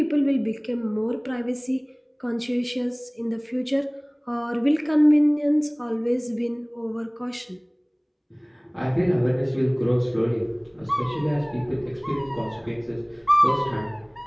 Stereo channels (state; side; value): identical; both; correlation 1.00